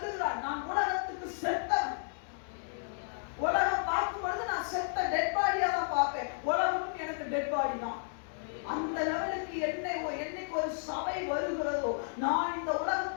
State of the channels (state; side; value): silent; right; digital silence